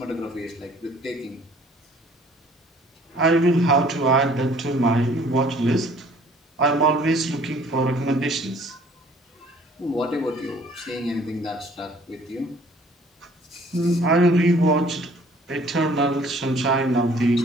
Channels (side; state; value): both; normal; correlation 0.55